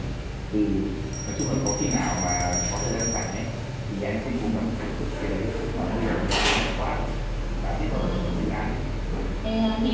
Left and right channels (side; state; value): both; identical; correlation 1.00